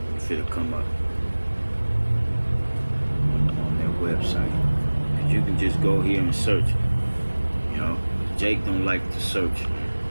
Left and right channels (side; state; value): both; inverted; correlation -1.00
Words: it'll come up on their website. And you can just go here and search. You know, Jake don't like to search.